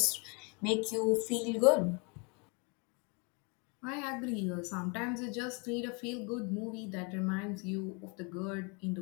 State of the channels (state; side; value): quieter; right; 32.6 dB